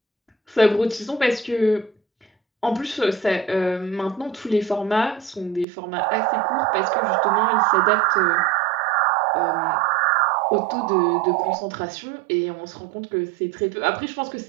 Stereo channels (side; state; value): left; drops out; at 5.7 s